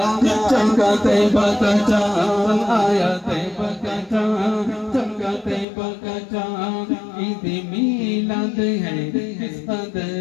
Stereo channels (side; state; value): right; drops out; at 5.7 s